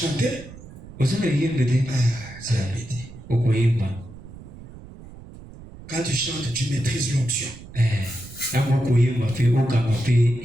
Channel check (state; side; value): noise; right; rumble, 17 dB below the sound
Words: C'est la bêtise. Quand tu chantes, tu maîtrises l'onction.